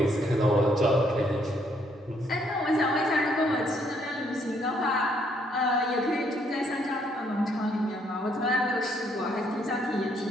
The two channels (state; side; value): normal; both; correlation 0.70